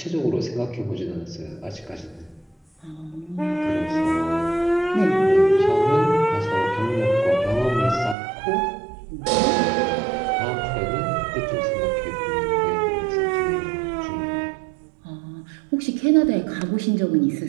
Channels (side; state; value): left; drops out; at 8.2 s